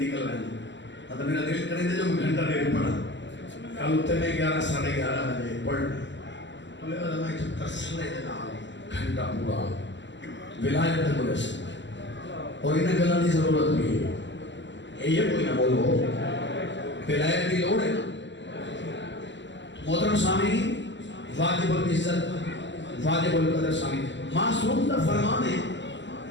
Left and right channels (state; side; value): late; right; 0.53 ms